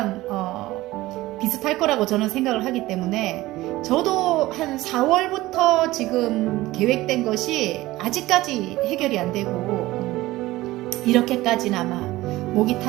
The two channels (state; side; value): quieter; left; 17.8 dB